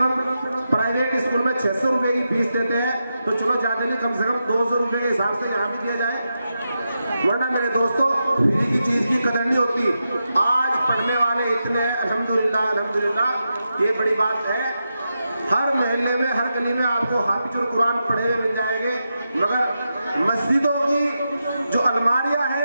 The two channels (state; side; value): inverted; both; correlation -0.88